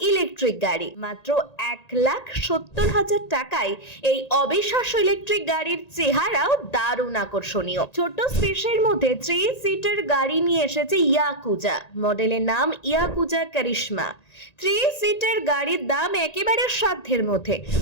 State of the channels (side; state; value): right; late; 1.9 ms